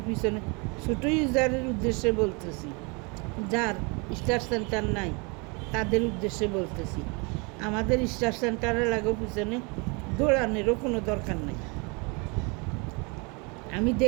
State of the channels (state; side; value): quieter; left; 30.8 dB